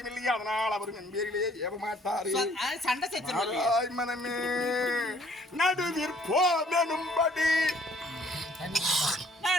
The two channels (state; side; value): normal; both; correlation 0.60